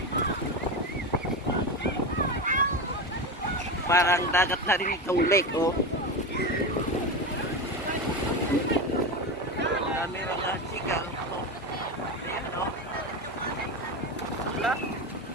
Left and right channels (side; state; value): both; normal; correlation 0.19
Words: Parang dagat na rin itong lake, oh. Dami mga sigaw, oh. Ayan, oh. Wala.